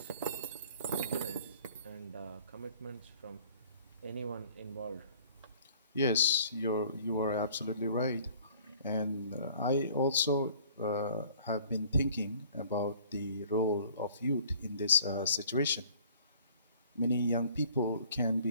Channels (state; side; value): inverted; both; correlation -0.54